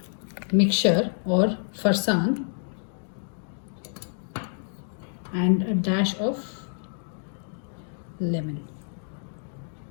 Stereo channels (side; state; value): right; silent; digital silence